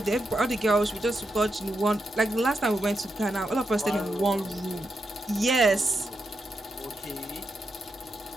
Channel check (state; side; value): normal; both; correlation 0.85